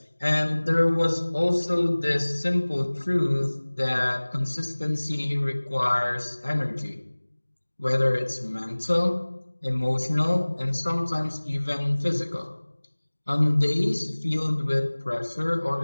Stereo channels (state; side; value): inverted; both; correlation -1.00